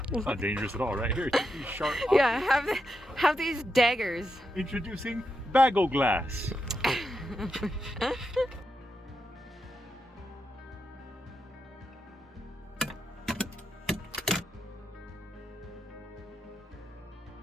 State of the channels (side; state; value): both; normal; correlation 0.85